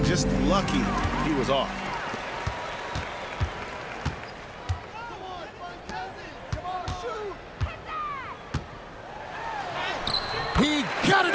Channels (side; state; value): both; identical; correlation 1.00